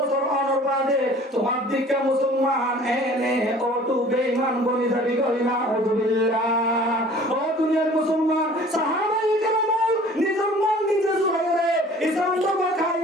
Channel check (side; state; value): both; normal; correlation 0.49